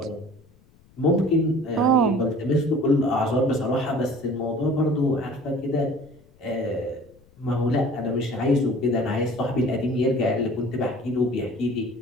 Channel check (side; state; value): left; noise; rumble, 29 dB below the sound